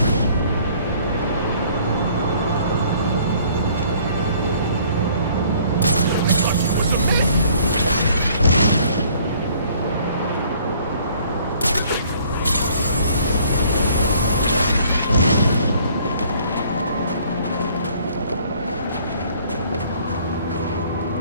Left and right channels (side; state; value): both; inverted; correlation -0.58